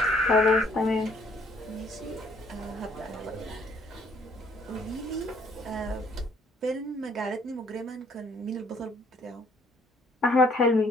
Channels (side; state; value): both; normal; correlation 0.63